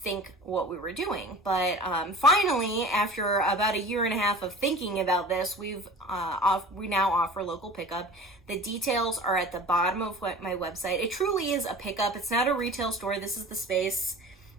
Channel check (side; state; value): both; normal; correlation 0.40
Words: what we were doing. But finally, after about a year and a half of thinking about this, we now offer local pickup. The details are at the bottom of my website. It truly is a pickup. It's not a retail store. This is the space